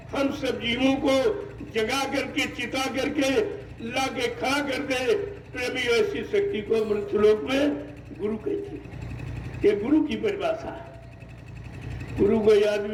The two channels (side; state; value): both; identical; correlation 1.00